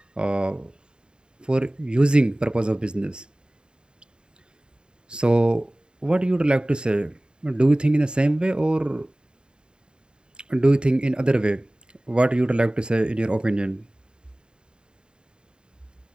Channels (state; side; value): late; left; 0.049 ms